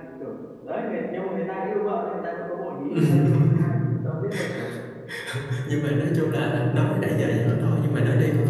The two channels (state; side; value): identical; both; correlation 1.00